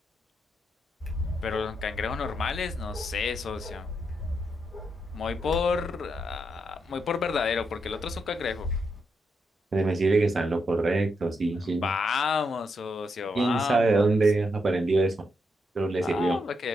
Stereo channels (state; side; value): normal; both; correlation 0.81